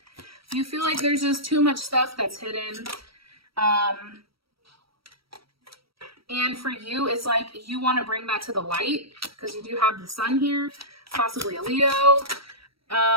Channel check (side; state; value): left; late; 0.75 ms